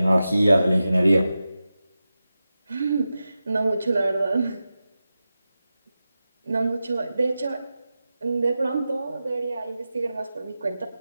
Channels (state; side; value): inverted; both; correlation -0.92